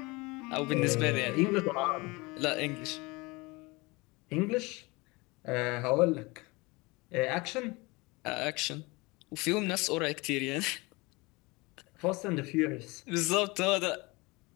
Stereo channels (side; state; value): right; quieter; 24.7 dB